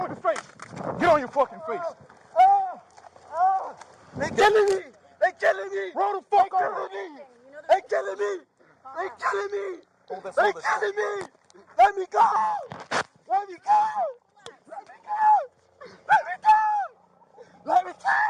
your face. Get on your fucking face. They killing me. They killing me. Roll the fuck They over. killing me. They killing me. They killing me. Hold this, They hold this. killing me. Let me go. Let me go. Let me go. Let me go. Let me go.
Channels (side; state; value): both; identical; correlation 1.00